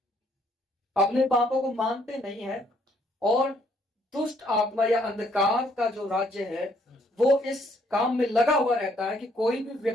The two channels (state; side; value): normal; both; correlation 0.67